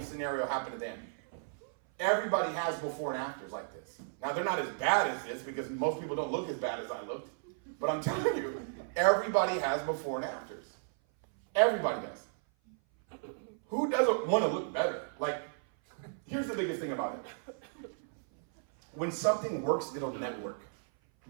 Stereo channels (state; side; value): silent; left; 55 dB below the other